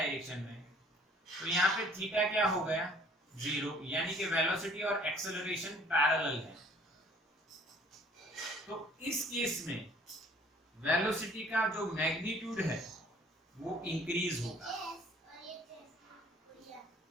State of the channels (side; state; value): both; normal; correlation 0.55